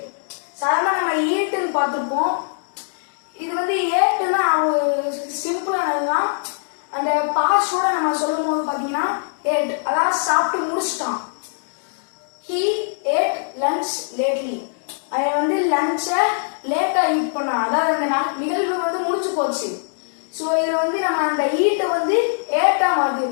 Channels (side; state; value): right; silent; digital silence